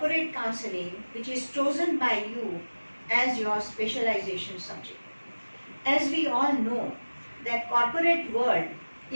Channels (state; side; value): inverted; both; correlation -1.00